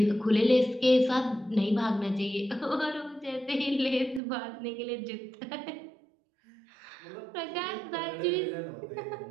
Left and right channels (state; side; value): drops out; left; at 4.2 s